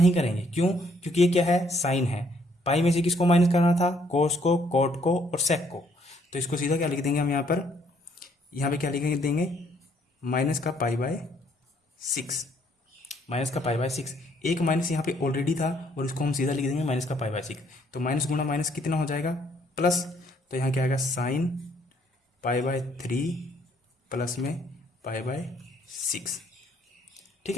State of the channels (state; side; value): normal; both; correlation 0.66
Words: करेंगे, क्यों, क्योंकि ये क्या है, साइन है। पाई में से किसको माइनस करना था, कोस को, कॉट को और सेक को। तो इसको सीधा क्या लिख देंगे हम यहाँ पर, यहाँ पे क्या लिख देंगे, माइनस का π/6, माइनस का π/6। एक माइनस यहाँ पे ऑलरेडी था और इसको हम सीधा लिख देंगे माइनस का π/6। तो माइनस गुना माइनस कितना हो जाएगा, प्लस। तो यहाँ क्या आएगा, साइन π/3 प्लस में π/6। ठीक